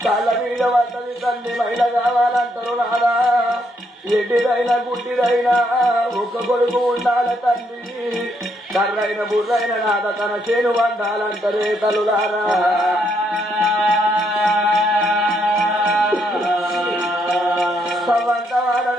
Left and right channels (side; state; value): both; normal; correlation 0.74